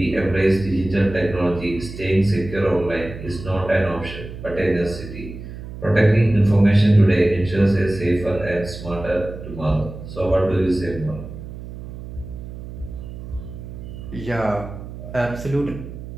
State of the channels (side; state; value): right; noise; hum, 11 dB below the sound